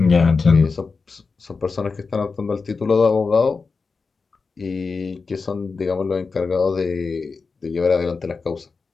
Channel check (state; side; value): quieter; right; 4.5 dB